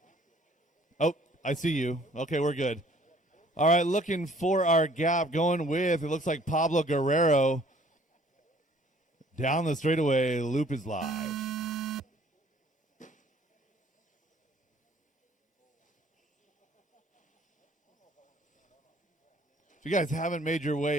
Oh, I see you. Okay, we're good. All right, looking for our gap. Going with, it looks like Pablo Guerrero. Down the straightaway, loop is live. If you guys haven't made your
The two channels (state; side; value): normal; both; correlation 0.57